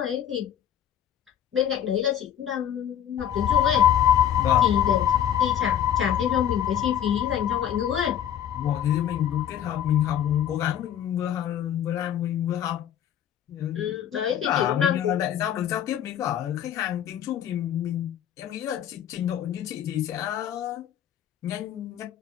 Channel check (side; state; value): right; quieter; 10.2 dB